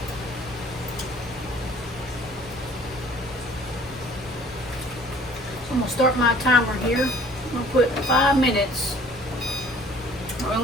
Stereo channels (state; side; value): normal; both; correlation 0.53